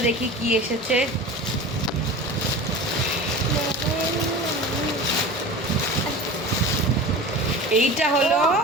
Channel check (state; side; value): noise; left; rumble, 28 dB below the sound